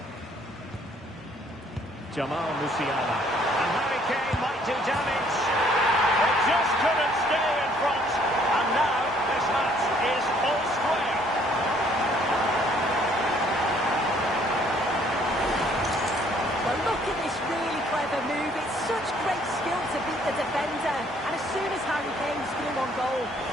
Jamal Musiala. And Harry Kane might do damage. It just couldn't stay in front. And now this match is all square. Well, look at this really clever move. It's such great skill to beat the defender. And as soon as Harry Kane's through on goal,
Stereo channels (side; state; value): both; normal; correlation 0.62